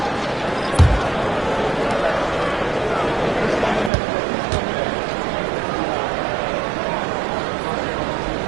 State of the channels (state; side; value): drops out; left; at 3.9 s